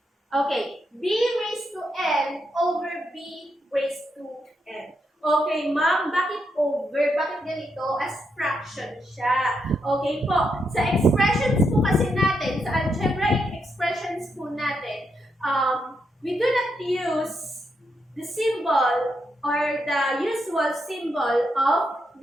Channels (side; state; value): both; normal; correlation 0.81